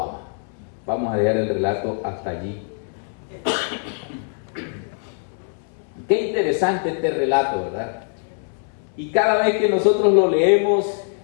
ama. Vamos a leer el relato hasta allí. Qué interesante este relato, ¿verdad? Y cada vez que nosotros lo leemos,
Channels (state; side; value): silent; right; 64 dB below the other